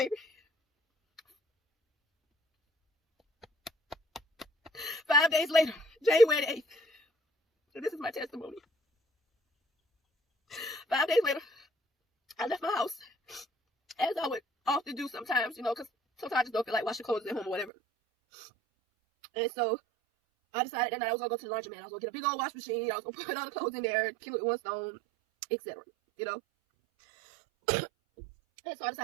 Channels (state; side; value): drops out; left; at 17.7 s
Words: 5 days later, January 8th. So this is my testimony. 5 days later, I left my house, as I would often do sometimes, because sometimes I just don't feel like washing clothes at home or whatever. And so I decided that night I was going to go to the laundromat. I was going to get a big old wash machine. I was going to put all the clothes in there, kill it with one stone, etc. And so I